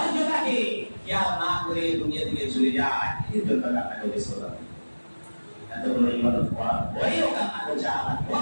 খেয়াল না করে দুনিয়া থেকে চলে যায়, এই জন্য কান্না করেছে। এতগুলো ইবাদত করার পরেও কান্না করছে, আমার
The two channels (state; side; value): inverted; both; correlation -1.00